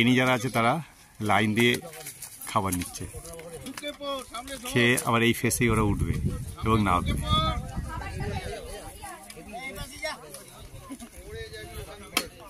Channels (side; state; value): both; identical; correlation 1.00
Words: যারা আছে তারা লাইন দিয়ে খাবার নিচ্ছে, খেয়ে আবার এই ফেসেই ওরা উঠবে এবং নামবে।